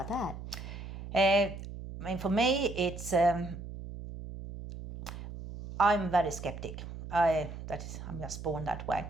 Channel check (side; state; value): right; noise; hum, 10 dB below the sound